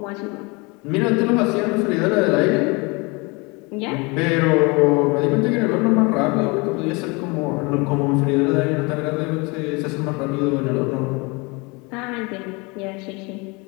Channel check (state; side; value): quieter; right; 27.6 dB